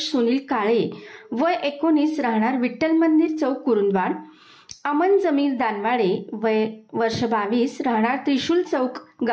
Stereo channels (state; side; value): identical; both; correlation 1.00